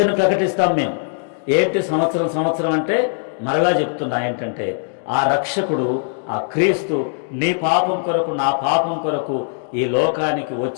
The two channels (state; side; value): silent; right; digital silence